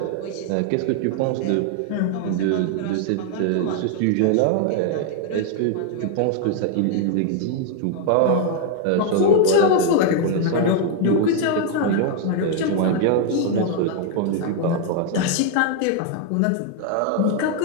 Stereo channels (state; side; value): different; both; correlation 0.00